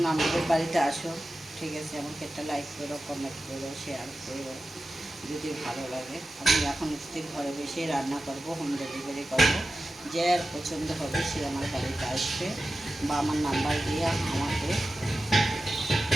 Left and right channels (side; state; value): both; normal; correlation 0.93